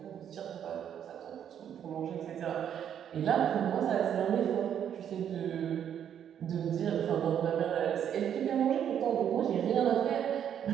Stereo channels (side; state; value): left; quieter; 9.2 dB